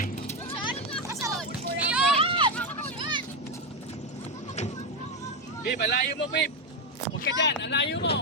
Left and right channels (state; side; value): normal; both; correlation 0.08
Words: Babe, alayo mo, babe. Huwag ka dyan, alayo